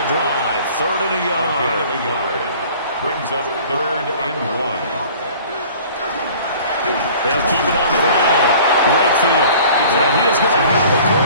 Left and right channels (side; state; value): both; inverted; correlation -0.48